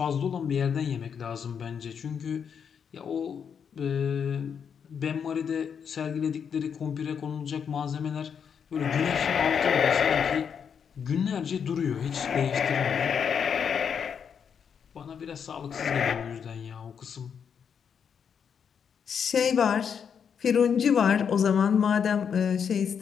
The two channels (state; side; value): quieter; right; 7.2 dB